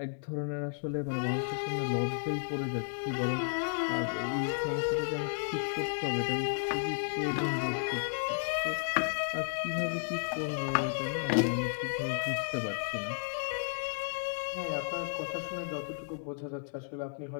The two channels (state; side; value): silent; right; 56 dB below the other